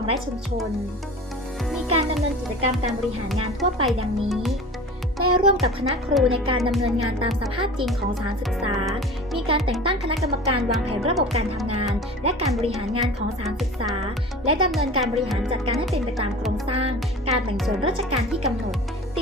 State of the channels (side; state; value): both; normal; correlation 0.37